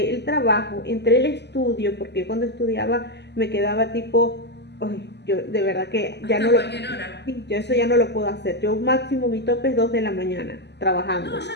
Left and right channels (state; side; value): late; right; 0.50 ms